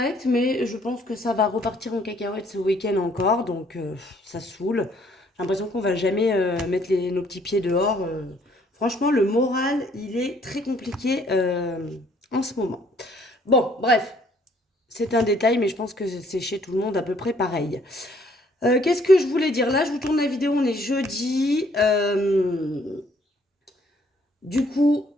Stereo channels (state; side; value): normal; both; correlation 0.63